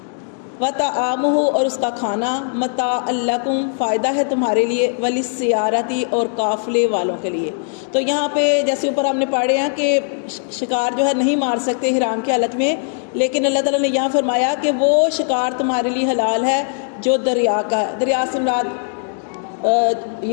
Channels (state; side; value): silent; right; 61 dB below the other